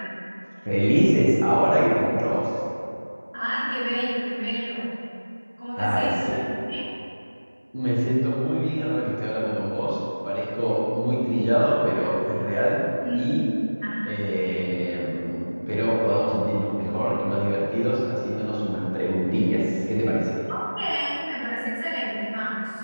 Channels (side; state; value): both; inverted; correlation -1.00